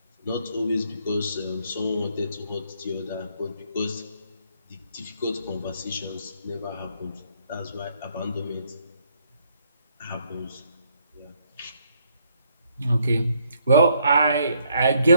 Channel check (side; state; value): both; inverted; correlation -0.70